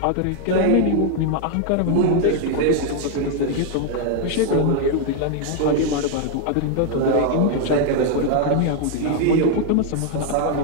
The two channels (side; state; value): both; different; correlation 0.00